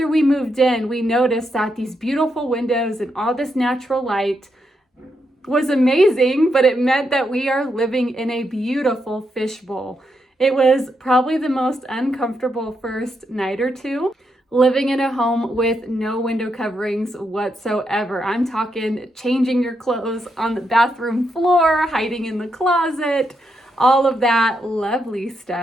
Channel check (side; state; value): both; normal; correlation 0.82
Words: we moved in, we noticed that these beautiful windows and all this natural light was amazing, but it meant that we are living in a beautiful fishbowl. It was probably the most uncomfortable first night or two, living in a home with no window coverings whatsoever. I'm talking changing your clothes on the bathroom floor, hiding in the closet, all of that lovely